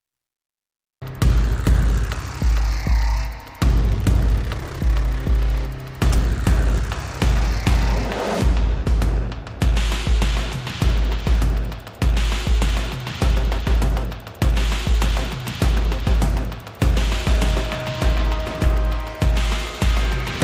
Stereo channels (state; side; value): identical; both; correlation 1.00